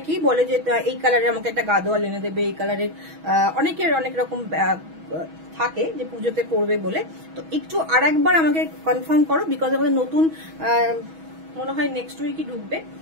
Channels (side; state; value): left; late; 6.2 ms